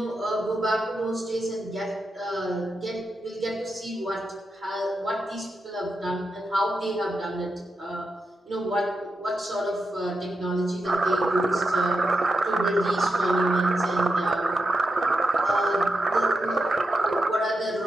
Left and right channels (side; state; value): both; normal; correlation 0.86